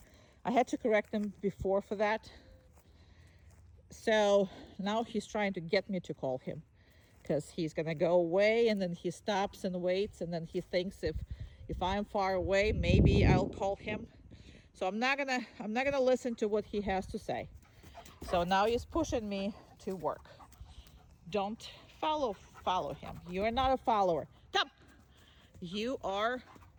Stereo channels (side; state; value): both; identical; correlation 1.00